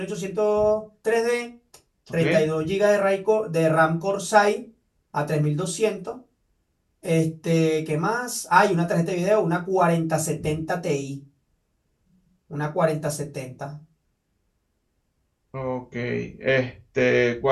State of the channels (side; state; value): both; identical; correlation 1.00